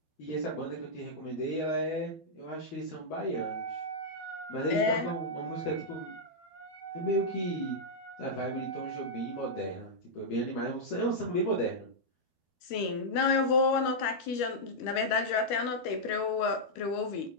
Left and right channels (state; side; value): late; right; 13 ms